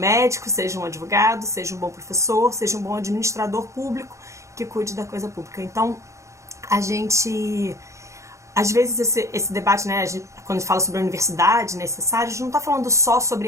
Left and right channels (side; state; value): left; late; 0.15 ms